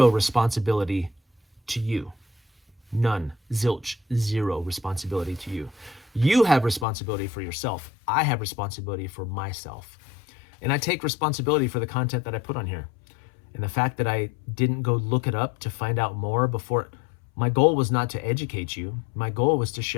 responsibility to you. None. Zilch. Zero responsibility to you. You have responsibility for yourself. I have responsibility for myself. And I take responsibility for the content that I put on here. And the fact that I didn't go look it up to find out more before, my goal was not to educate you. My goal was to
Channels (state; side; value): drops out; right; at 6.9 s